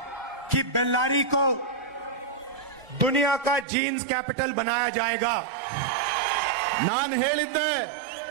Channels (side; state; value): left; drops out; at 3.7 s